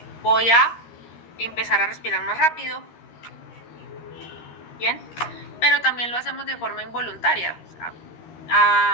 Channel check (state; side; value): late; right; 13 ms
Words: Voy a empezar a respirar más rápido, ¿bien? Pero también lo hacemos de forma involuntaria. O sea,